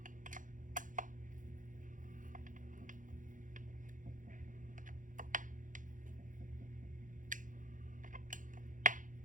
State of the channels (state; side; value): late; left; 0.38 ms